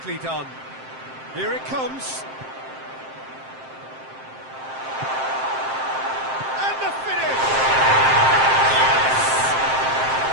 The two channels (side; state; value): left; late; 7.6 ms